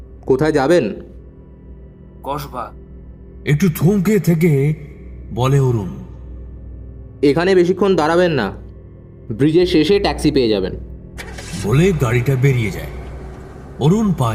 কোথায় যাবেন? কসবা। একটু থমকে থেকে বলে অরুণ। এখানে বেশিক্ষণ দাঁড়াবেন না, ব্রিজের শেষে ট্যাক্সি পেয়ে যাবেন। বলে গাড়িটা বেরিয়ে যায়। অরুণ পা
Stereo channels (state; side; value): identical; both; correlation 1.00